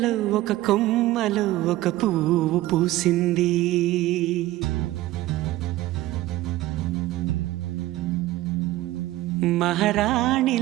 ఒక కొమ్మలో ఒక పువ్వు పూసింది.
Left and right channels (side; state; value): left; quieter; 16.2 dB